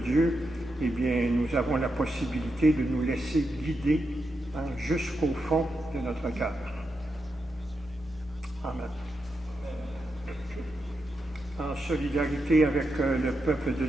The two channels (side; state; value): both; normal; correlation 0.86